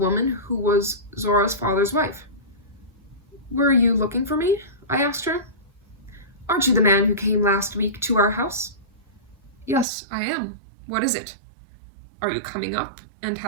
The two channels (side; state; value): left; drops out; at 9.9 s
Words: who was Zora's father's wife. Were you looking for me? I asked her. Aren't you the man who came last week to our house? Yes, I am. What is it? Are you coming up and